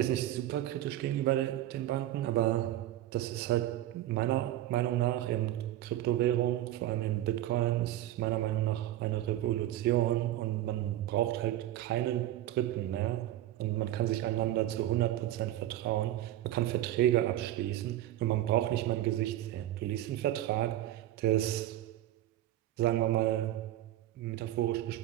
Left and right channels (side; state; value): left; quieter; 13.6 dB